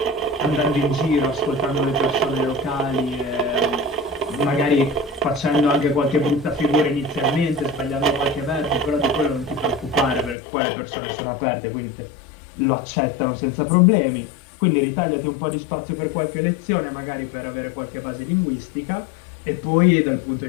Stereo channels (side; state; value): right; drops out; at 10.4 s